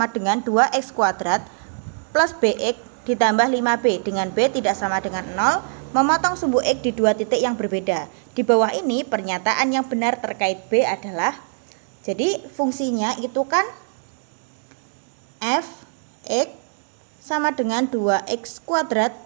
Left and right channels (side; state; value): left; silent; digital silence